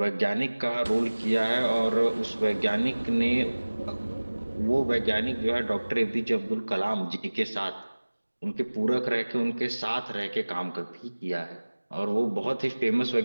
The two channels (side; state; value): both; inverted; correlation -1.00